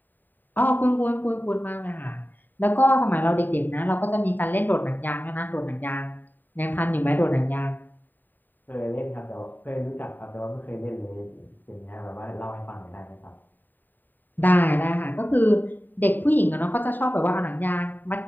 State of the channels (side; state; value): right; late; 0.090 ms